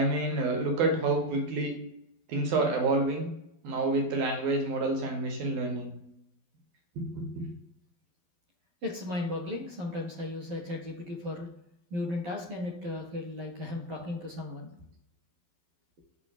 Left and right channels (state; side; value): late; left; 12 ms